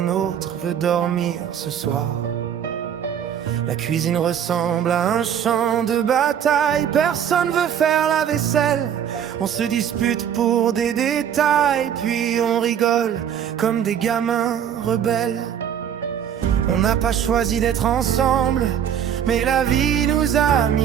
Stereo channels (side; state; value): left; quieter; 9.0 dB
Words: autre veut dormir ce soir. La cuisine ressemble à un champ de bataille. Personne veut faire la vaisselle. On se dispute pour des détails, puis on rigole comme des gamins rebelles. On n'a pas choisi d'être ensemble, mais la vie nous a